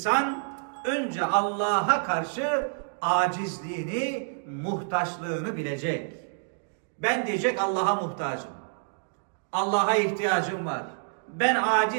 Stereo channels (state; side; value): silent; left; digital silence